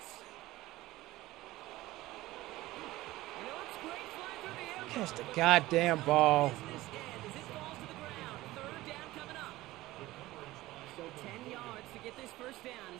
You know, it's great flying through the air. Catch the goddamn ball. Business end as it falls to the ground. 3rd down coming up. So 10 yards to get this 1st down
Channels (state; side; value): quieter; left; 17.6 dB